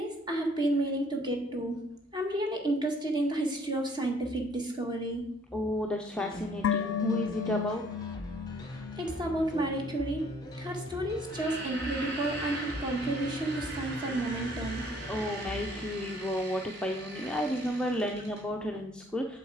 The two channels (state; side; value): normal; both; correlation 0.60